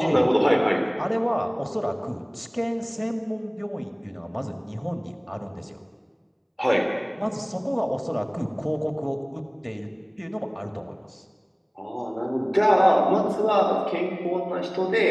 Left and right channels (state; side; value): identical; both; correlation 1.00